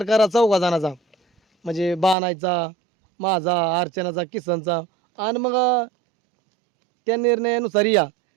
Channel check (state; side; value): drops out; left; at 2.1 s